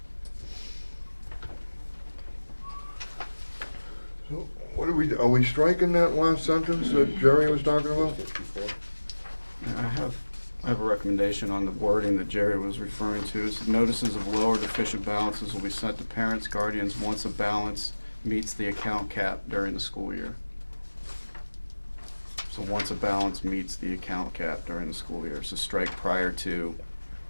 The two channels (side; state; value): both; inverted; correlation -1.00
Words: So what are we striking that last sentence that Jerry was talking about? 54. I have a recommendation on the wording that Jerry was referring to. Is notices of low or deficient balances will be sent to parents, guardians once a balance meets the account cap during the school year. So once a balance meets the account cap during the school year. So strike prior to,